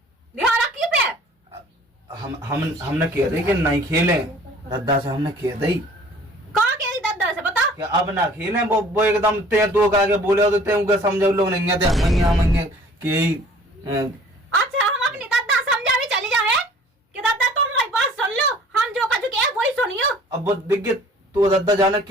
ध्यान रखिए पे हमने कह दी कि नहीं खेले दद्दा से हमने कह दी कहाँ कह दी दद्दा से बता कि अब ना खेले वो एकदम ते तो आगे बोले तो ते उनके समझो लोग नहीं थे मंगे कि अच्छा हम अपनी दद्दा समझा भी चली जाए कि दद्दा तुम हमारी बात सुन लो हम जो कह चुके हैं वही सुनियो। अब वो दिखे तो दद्दा जाने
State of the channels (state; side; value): normal; both; correlation 0.51